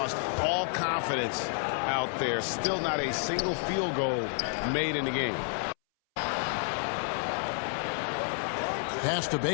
all confidence out there. Still not a single field goal made in the game. Pass to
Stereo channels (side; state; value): right; silent; 58 dB below the other